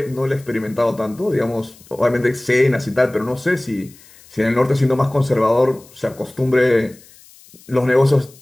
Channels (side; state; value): left; noise; hiss, 25 dB below the sound